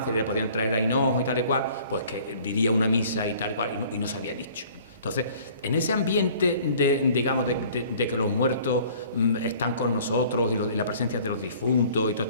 y le podían traer a hinojo y tal y cual, pues que diría una misa y tal y cual, y no se había dicho. Entonces, en ese ambiente de que los muertos están con nosotros y la presencia de los difuntos y todo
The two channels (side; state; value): both; inverted; correlation -0.52